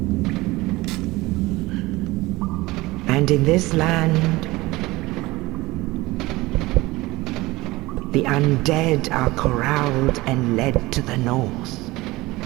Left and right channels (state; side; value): quieter; left; 20.4 dB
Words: And in this land, the undead are corralled and led to the north.